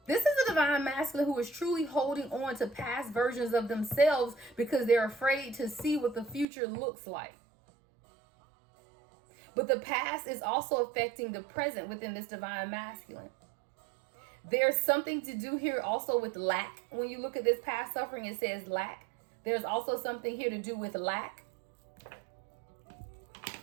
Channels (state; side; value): drops out; left; at 6.5 s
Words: This is a divine masculine who is truly holding on to past versions of themselves because they're afraid to see what the future looks like. But the past is also affecting the present within this divine masculine. There's something to do here also with lack. When you look at this past suffering, it says lack. There's also something here to do with lack.